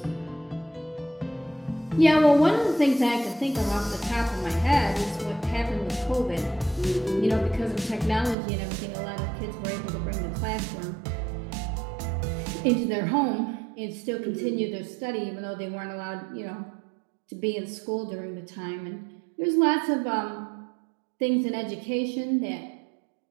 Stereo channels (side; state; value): left; drops out; at 8.3 s